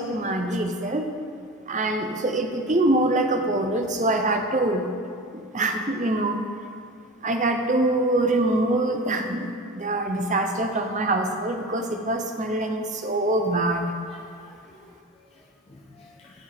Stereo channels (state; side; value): normal; both; correlation 0.32